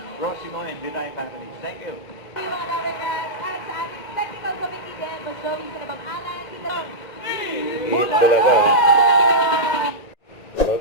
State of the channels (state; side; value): late; right; 2.1 ms